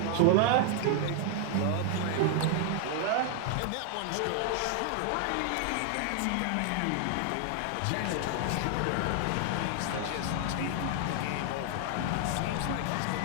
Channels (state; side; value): different; both; correlation 0.00